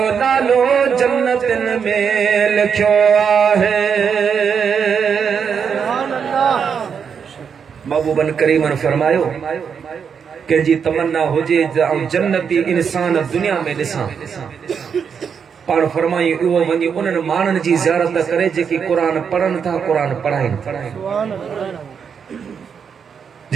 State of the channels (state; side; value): quieter; left; 6.8 dB